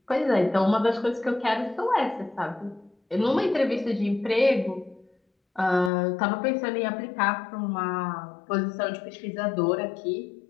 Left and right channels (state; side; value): drops out; right; at 5.9 s